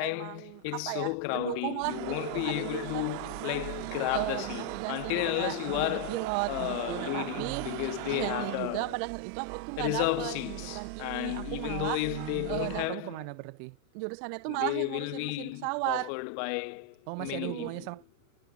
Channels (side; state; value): both; different; correlation 0.00